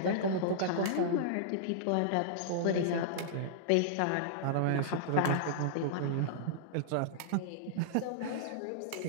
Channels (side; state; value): both; different; correlation -0.02